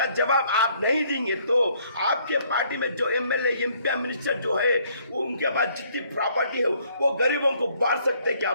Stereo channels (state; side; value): inverted; both; correlation -0.65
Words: जवाब आप नहीं देंगे तो आपके पार्टी में जो एमएलए एमपी मिनिस्टर जो है वो, उनके पास जितनी प्रॉपर्टी है वो गरीबों को बांट सकते हैं क्या